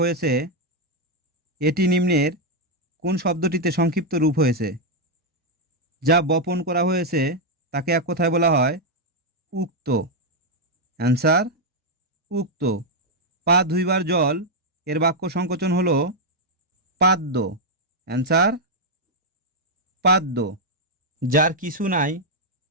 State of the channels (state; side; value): normal; both; correlation -0.01